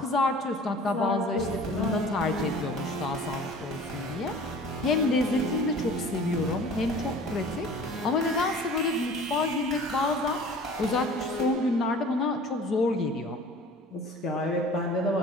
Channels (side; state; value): both; normal; correlation 0.45